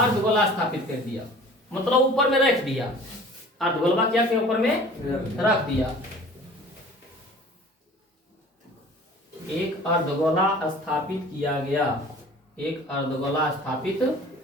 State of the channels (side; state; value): both; normal; correlation 0.45